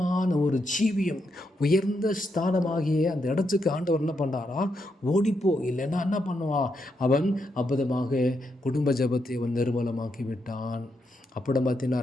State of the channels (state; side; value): normal; both; correlation 0.81